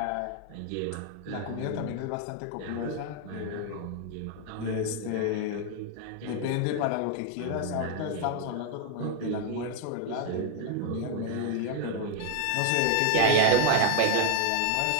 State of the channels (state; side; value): different; both; correlation 0.01